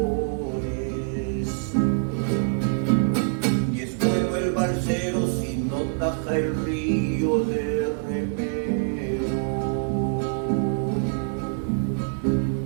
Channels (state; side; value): silent; left; 60 dB below the other